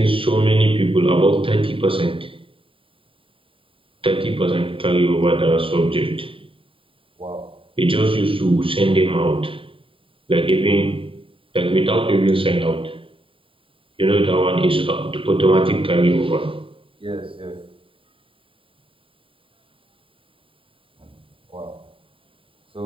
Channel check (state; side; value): late; left; 0.25 ms